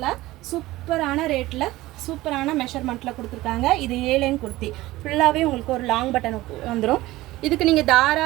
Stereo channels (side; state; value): left; quieter; 17.8 dB